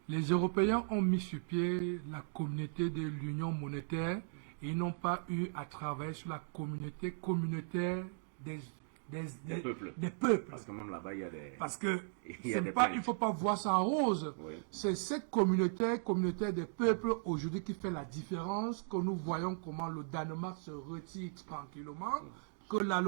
les Européens ont mis sur pied la communauté de l'union monétaire et ils n'ont pas eu à travailler sur la communauté communautaire des peuples. Parce que même là-bas, il y a des... Parce que il ne faut pas voir ça en rose. Oui. C'est cette communauté des peuples aujourd'hui qui fait la différence, que nous voyons comment le Danemark se retire tranquillement, que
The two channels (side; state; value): left; silent; digital silence